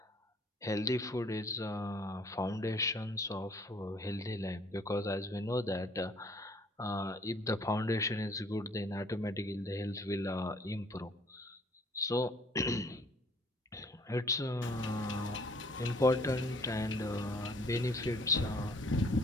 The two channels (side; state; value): both; normal; correlation 0.57